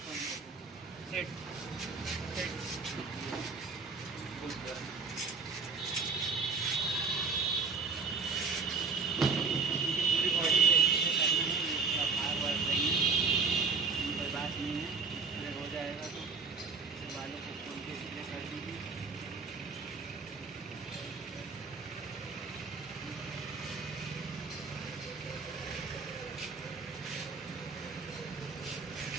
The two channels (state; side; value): quieter; left; 4.7 dB